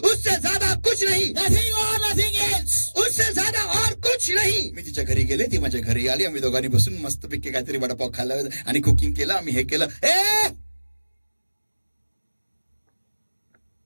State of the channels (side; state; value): both; inverted; correlation -1.00